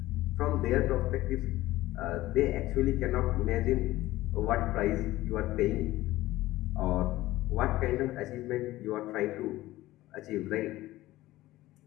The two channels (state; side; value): quieter; right; 16.8 dB